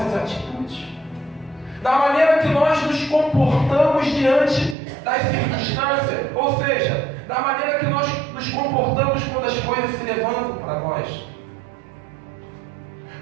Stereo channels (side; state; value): left; drops out; at 4.8 s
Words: atitudes, da maneira que nós nos comportamos diante das circunstâncias, ou seja, da maneira que nós nos comportamos quando as coisas se levantam para nós.